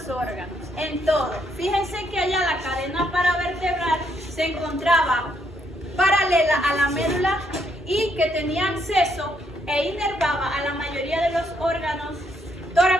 los órganos, en todo. Fíjense que allá la cadena paravertebral se encontraba paralela a la médula y que tenía acceso e inervaba a la mayoría de los órganos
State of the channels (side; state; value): both; normal; correlation 0.73